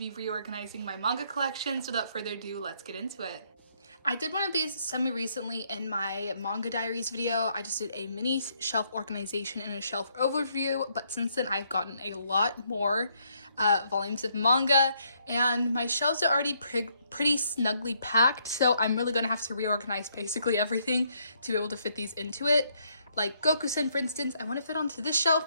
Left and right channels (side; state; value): both; inverted; correlation -0.72